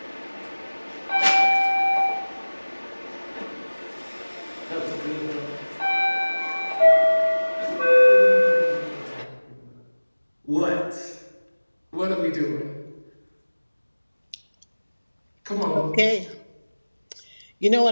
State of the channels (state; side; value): inverted; both; correlation -1.00